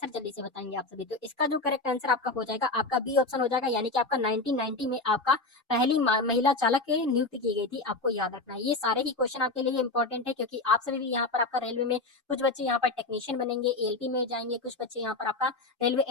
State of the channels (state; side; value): quieter; right; 3.3 dB